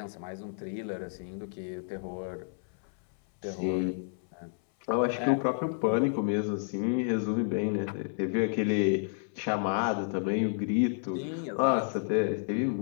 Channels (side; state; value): right; silent; 57 dB below the other